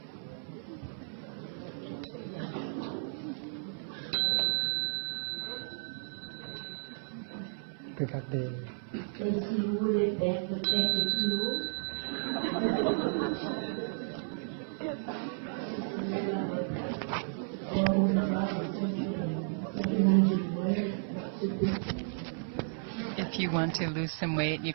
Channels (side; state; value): left; silent; 56 dB below the other